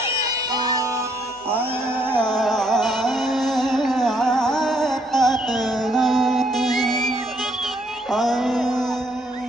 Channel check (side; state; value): both; normal; correlation 0.69